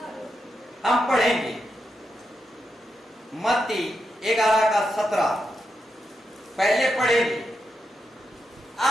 हम पढ़ेंगे मत्ती 11:17 पहले पढ़ेंगे।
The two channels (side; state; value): both; normal; correlation 0.85